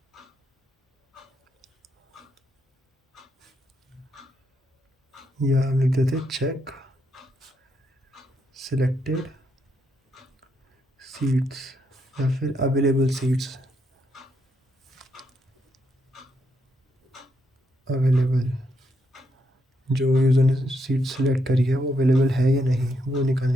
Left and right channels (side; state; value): both; normal; correlation 0.78